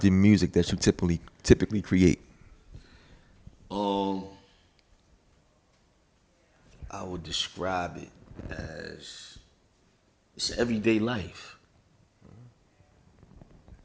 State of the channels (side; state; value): both; identical; correlation 1.00